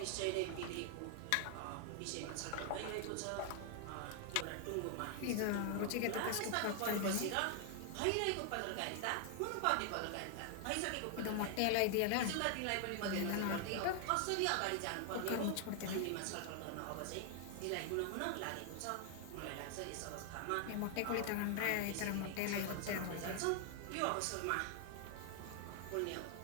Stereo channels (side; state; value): both; different; correlation 0.00